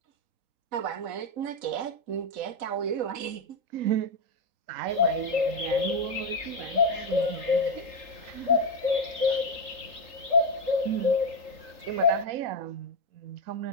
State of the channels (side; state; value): left; late; 3.8 ms